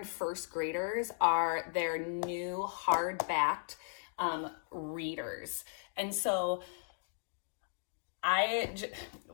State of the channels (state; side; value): silent; right; digital silence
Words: first graders are their new hardbacked readers. And so I've